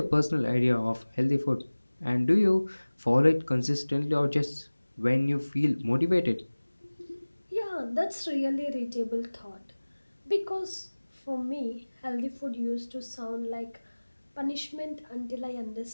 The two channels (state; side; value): inverted; both; correlation -1.00